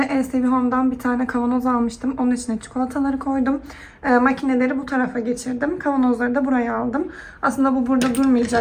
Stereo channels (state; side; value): identical; both; correlation 1.00